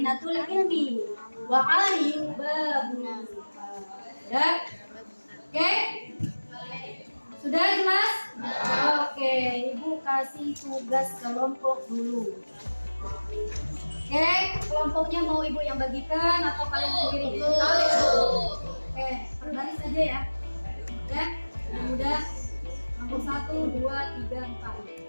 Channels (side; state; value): both; inverted; correlation -1.00